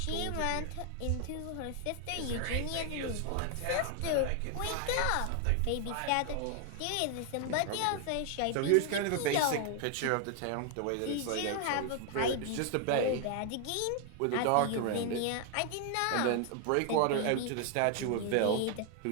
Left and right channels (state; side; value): different; both; correlation 0.00